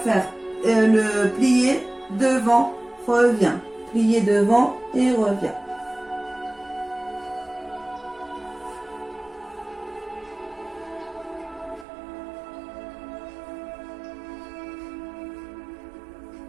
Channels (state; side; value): drops out; left; at 11.9 s